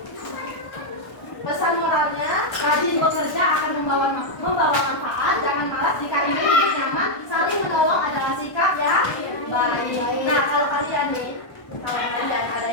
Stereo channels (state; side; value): late; right; 1.2 ms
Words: Pesan moralnya, rajin bekerja akan membawa manfaat. Jangan malas, jika ingin hidup nyaman, saling menolong adalah sikap yang baik. Nah, kalau kalian nih, kalau kalian ada